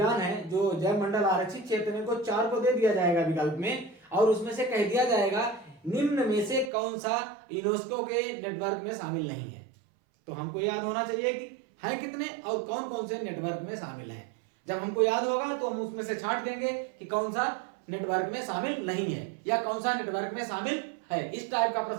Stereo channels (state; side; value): drops out; left; at 6.7 s